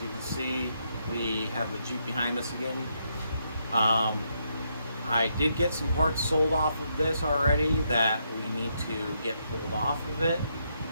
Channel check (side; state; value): both; inverted; correlation -0.78